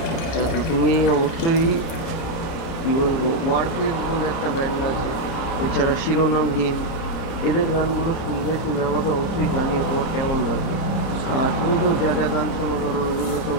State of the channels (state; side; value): late; right; 30 ms